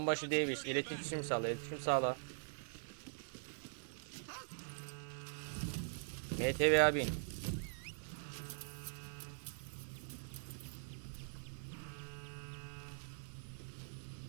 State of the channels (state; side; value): silent; left; digital silence